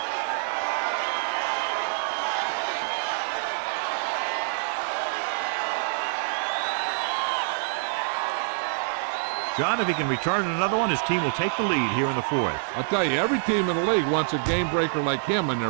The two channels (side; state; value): left; silent; digital silence